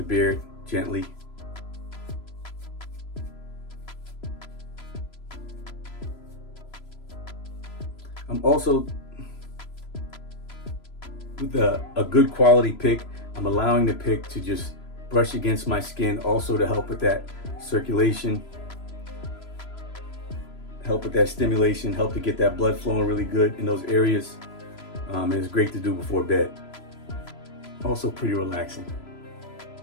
beard gently. I'm also, with a good quality pick, I'm allowing the pick to just brush against my skin, also to help with that circulation. help with that stimulation, help to get that blood flowing really good in those areas. And it's great to do before bed. Also pretty relaxing.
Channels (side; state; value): right; late; 3.0 ms